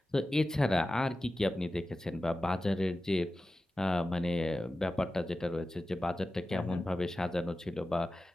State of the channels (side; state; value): both; normal; correlation 0.94